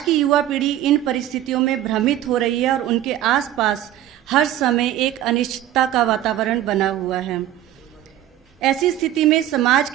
की युवा पीढ़ी इन परिस्थितियों में भ्रमित हो रही है और उनके आसपास हर समय एक अनिश्चितता का वातावरण बना हुआ है। ऐसी स्थिति में समाज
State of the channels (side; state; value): left; quieter; 12.6 dB